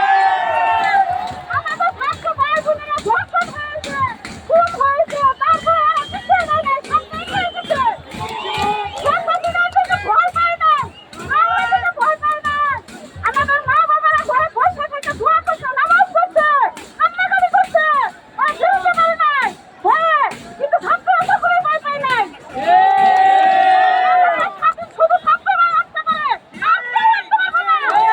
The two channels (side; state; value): both; identical; correlation 1.00